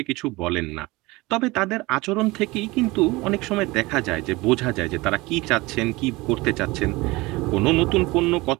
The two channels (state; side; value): quieter; left; 22.0 dB